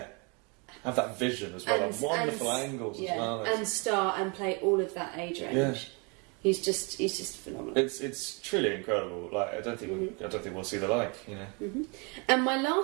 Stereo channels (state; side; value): quieter; left; 32.1 dB